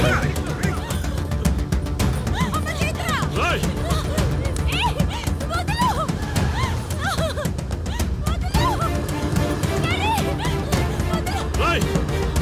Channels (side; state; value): both; identical; correlation 1.00